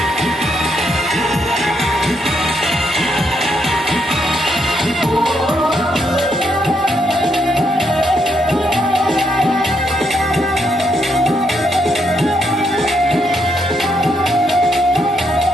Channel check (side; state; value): both; normal; correlation 0.77